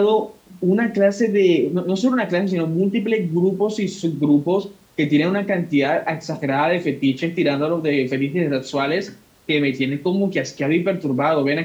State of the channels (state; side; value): identical; both; correlation 1.00